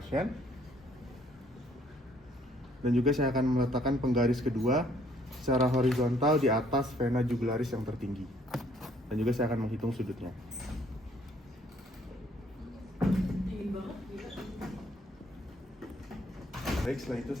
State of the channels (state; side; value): normal; both; correlation 0.63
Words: Dan juga saya akan meletakkan penggaris kedua secara horizontal di atas vena jugularis yang tertinggi. Dan juga saya akan menghitung sudutnya. Baik, setelah itu